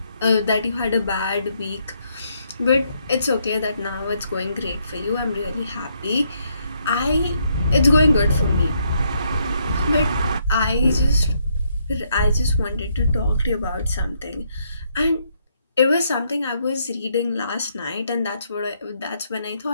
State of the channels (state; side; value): inverted; both; correlation -0.73